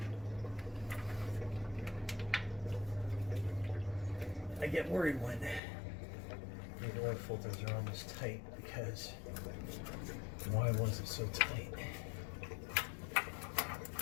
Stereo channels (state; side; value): drops out; right; at 5.6 s